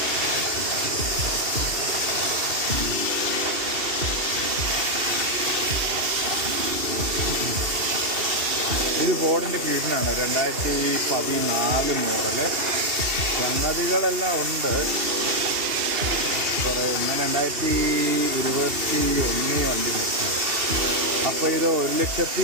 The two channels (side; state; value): left; late; 2.7 ms